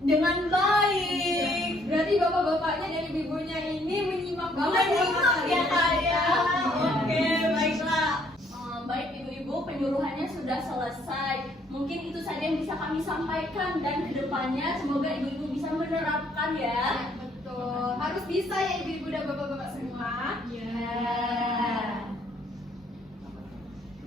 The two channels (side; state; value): both; normal; correlation 0.66